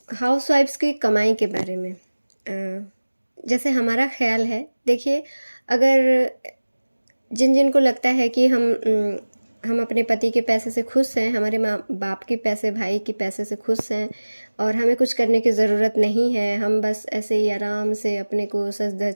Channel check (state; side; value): inverted; both; correlation -1.00